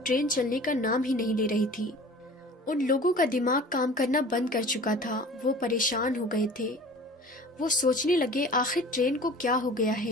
ٹرین چلنے کا نام ہی نہیں لے رہی تھی۔ ان لوگوں کا دماغ کام کرنا بند کر چکا تھا، وہ پریشان ہو گئے تھے۔ وہ سوچنے لگے، آخر ٹرین کو کیا ہو گیا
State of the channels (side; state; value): both; normal; correlation 0.43